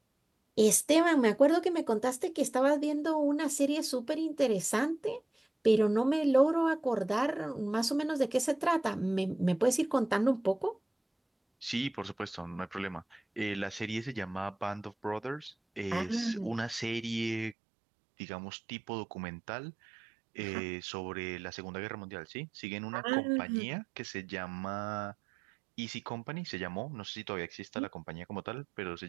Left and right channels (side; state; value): left; drops out; at 17.6 s